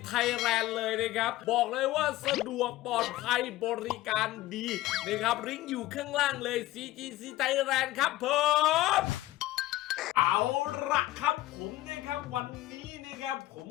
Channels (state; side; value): quieter; right; 16.4 dB